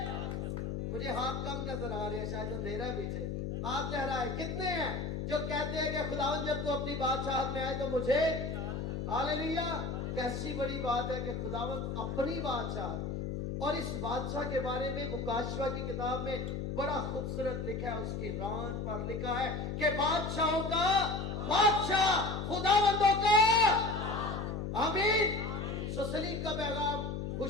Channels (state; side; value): noise; left; hum, 3 dB below the sound